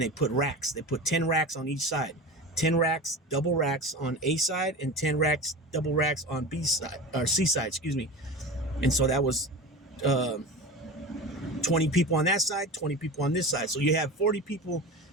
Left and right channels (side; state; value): both; normal; correlation 0.30